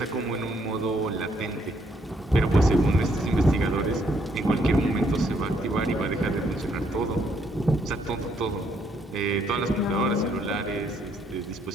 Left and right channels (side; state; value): both; normal; correlation 0.71